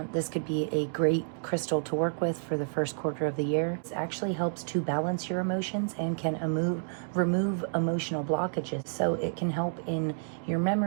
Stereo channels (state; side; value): silent; left; digital silence